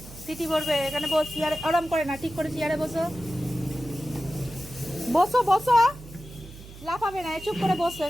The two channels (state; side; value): noise; right; hum, 17 dB below the sound